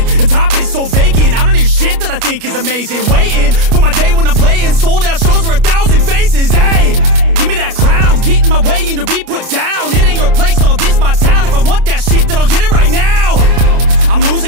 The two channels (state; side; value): late; left; 33 ms